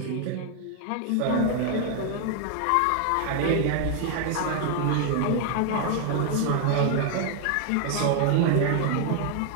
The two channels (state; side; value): different; both; correlation 0.00